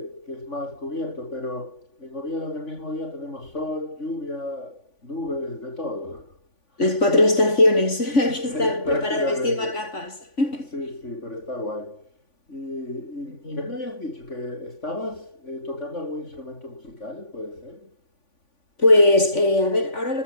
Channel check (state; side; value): late; right; 3.5 ms